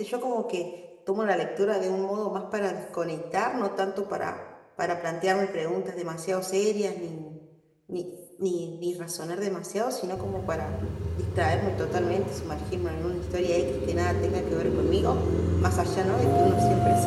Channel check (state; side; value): identical; both; correlation 1.00